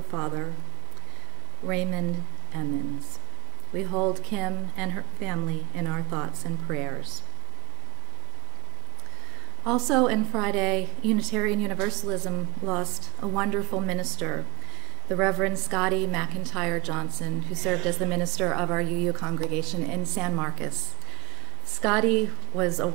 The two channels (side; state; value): left; quieter; 27.7 dB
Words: Raymond Emmons. We hold Kim and her family in our thoughts and prayers. Also in Friday, Unitarian Universalism lost a wonderful minister, the Reverend Scotty McIntyre Johnson, who served as the minister of our UU congregation in San Marcos. Scotty was a